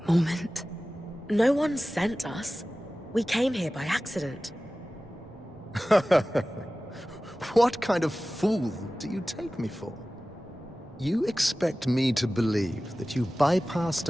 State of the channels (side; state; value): both; normal; correlation 0.96